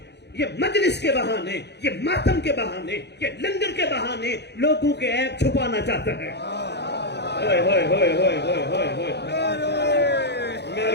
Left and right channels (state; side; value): late; right; 0.49 ms